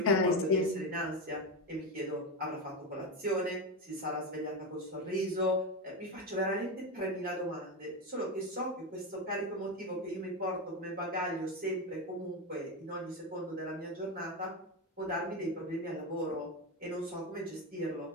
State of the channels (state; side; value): normal; both; correlation 0.14